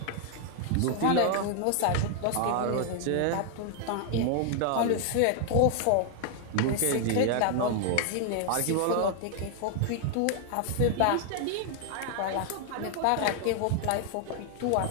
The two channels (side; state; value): both; different; correlation 0.00